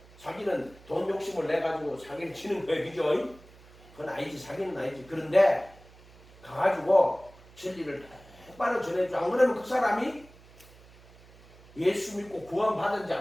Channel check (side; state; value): right; noise; hum, 24 dB below the sound